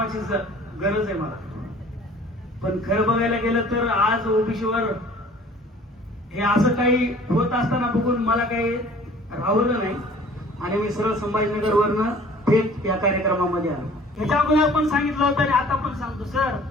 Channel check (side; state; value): both; normal; correlation 0.50